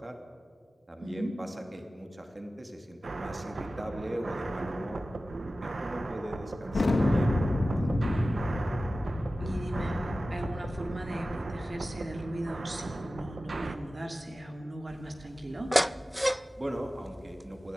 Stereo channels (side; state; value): both; normal; correlation 0.95